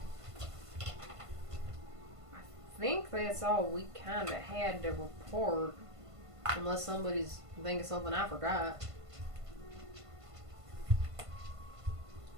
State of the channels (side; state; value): left; late; 1.5 ms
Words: I think that's all we kind of had to report. Unless somebody's thinking something I forgot.